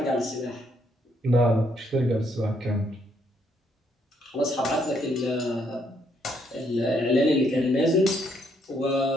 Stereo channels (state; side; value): normal; both; correlation 0.72